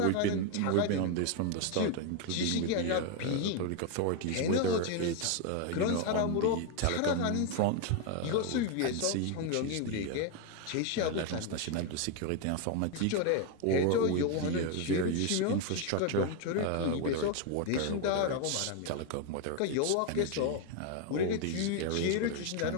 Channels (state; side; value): different; both; correlation 0.01